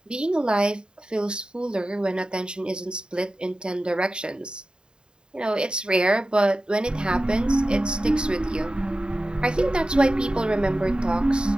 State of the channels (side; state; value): left; late; 0.049 ms